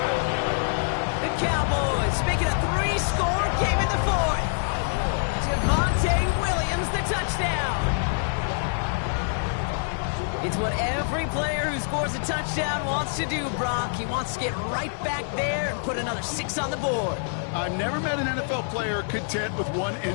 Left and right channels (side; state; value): right; silent; digital silence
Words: The Cowboys make it a 3-score game in the 4th. Javonte Williams, the touchdown. It's what every player who scores a touchdown wants to do, Brock. He wants to get right back there and put another 6 on the board. I've never met an NFL player content with one